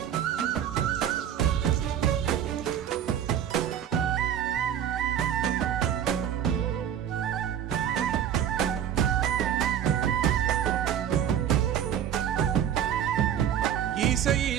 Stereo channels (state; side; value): quieter; left; 9.7 dB